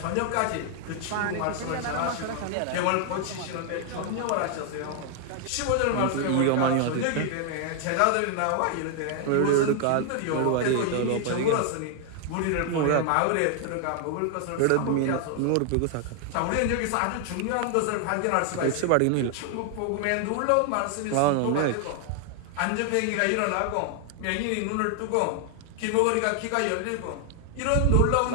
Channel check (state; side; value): different; both; correlation 0.00